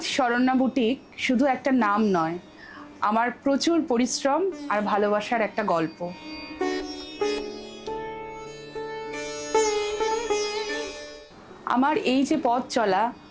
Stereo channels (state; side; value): identical; both; correlation 1.00